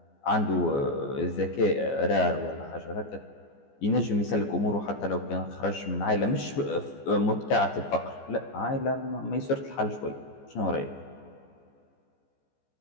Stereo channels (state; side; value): late; right; 14 ms